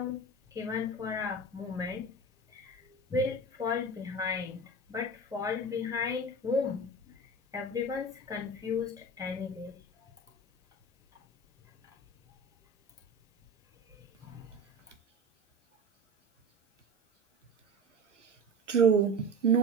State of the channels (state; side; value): normal; both; correlation 0.31